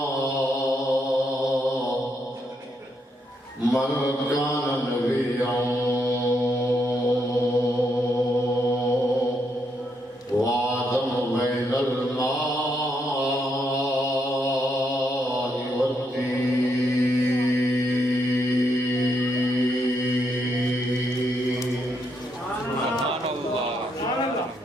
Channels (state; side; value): normal; both; correlation 0.77